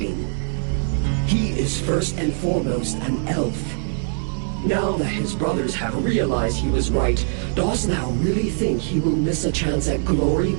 He is first and foremost an elf. Now that his brothers have realized he was right, dost thou really think he will miss a chance at glory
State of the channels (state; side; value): silent; left; digital silence